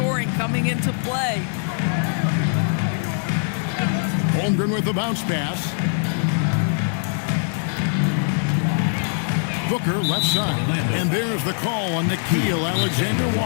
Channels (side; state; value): right; silent; 56 dB below the other